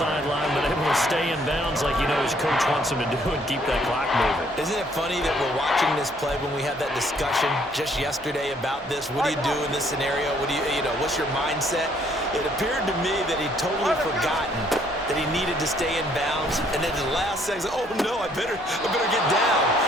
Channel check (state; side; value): normal; both; correlation 0.65